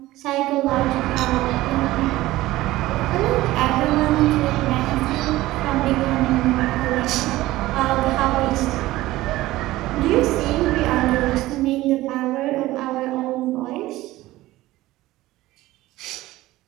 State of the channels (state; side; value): quieter; left; 17.1 dB